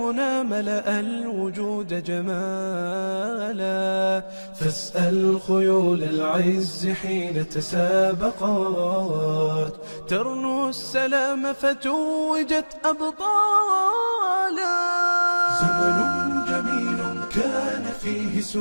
ملأ الوجود جمالا، فاسأل خيول العز حين تسابقت، ترنو السلام فتوجت أبطالا. زمن جميل كان فيه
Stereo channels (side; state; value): both; inverted; correlation -1.00